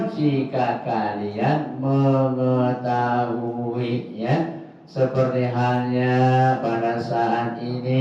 jika kalian mengetahui, ya. Seperti halnya pada saat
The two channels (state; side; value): identical; both; correlation 1.00